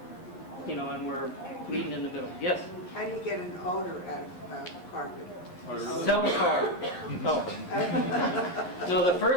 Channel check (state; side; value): late; right; 11 ms